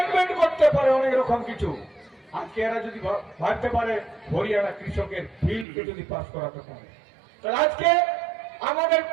করতে পারে অনেক রকম কিছু, আজকে এরা যদি ভাবতে পারে হরিয়ানা কৃষকের বিলকে যদি পাস করাতে পারে, তাহলে আজকে আমাদের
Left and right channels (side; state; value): left; drops out; at 5.7 s